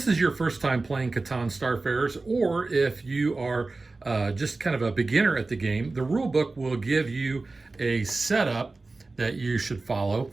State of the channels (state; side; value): quieter; left; 3.5 dB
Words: is your first time playing Catan Starfarers, or if you are just kind of a beginner at the game, the rule book will give you a setup that you should follow,